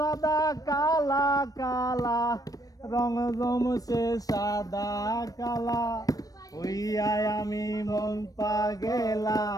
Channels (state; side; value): late; right; 0.18 ms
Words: কালা কালা রং জমছে সাদা কালা। হইয়ায় আমি মন পাগেলা